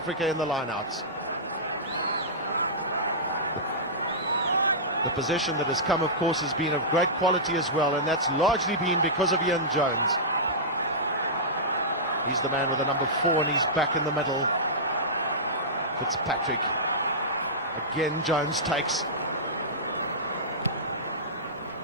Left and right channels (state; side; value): normal; both; correlation -0.16